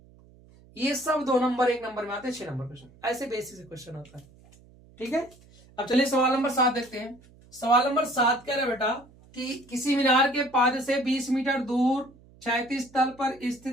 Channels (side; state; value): right; noise; hum, 26 dB below the sound